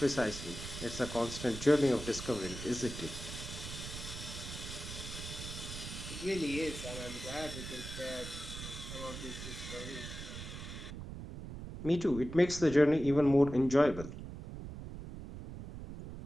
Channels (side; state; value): right; noise; rumble, 9 dB below the sound